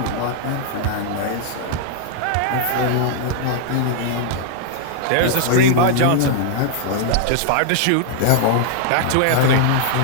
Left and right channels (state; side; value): different; both; correlation 0.00